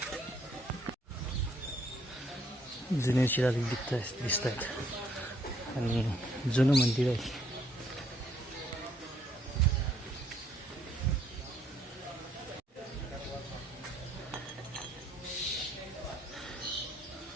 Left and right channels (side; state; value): both; normal; correlation 0.67